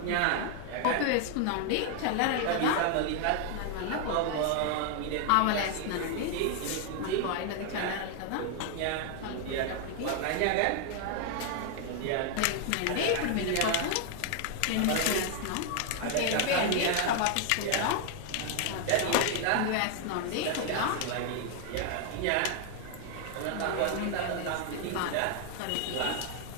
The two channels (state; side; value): different; both; correlation 0.00